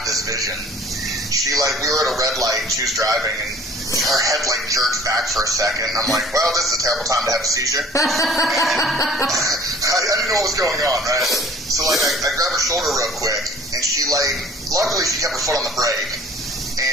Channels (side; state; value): both; normal; correlation 0.50